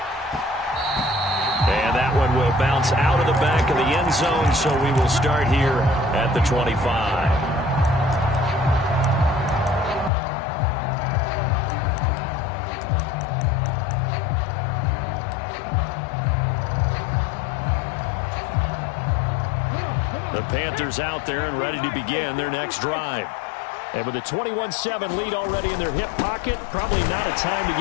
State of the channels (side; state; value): right; drops out; at 10.1 s